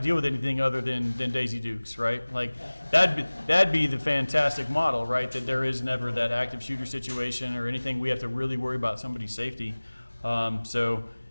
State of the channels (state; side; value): inverted; both; correlation -1.00